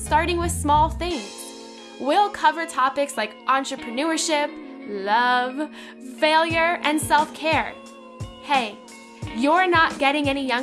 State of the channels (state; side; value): identical; both; correlation 1.00